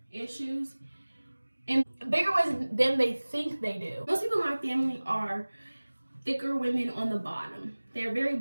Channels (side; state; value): both; inverted; correlation -1.00